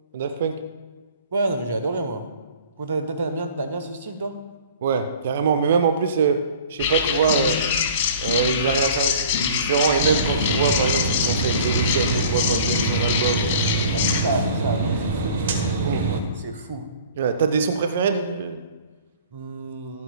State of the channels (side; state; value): both; inverted; correlation -0.45